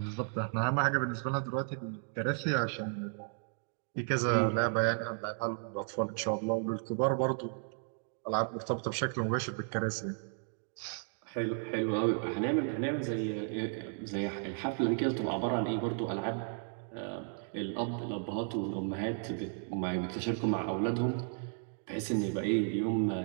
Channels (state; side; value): silent; left; 55 dB below the other